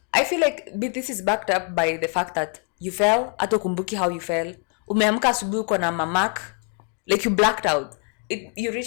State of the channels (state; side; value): quieter; right; 37.4 dB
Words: I feel like this is backed up by the fact that you fell, hata kumbuki how you fell. Umeamka asubuhi uko na mamak, like you blacked out. You